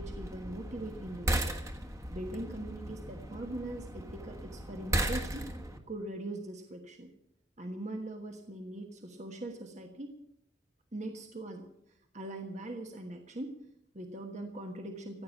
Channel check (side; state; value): both; normal; correlation 0.68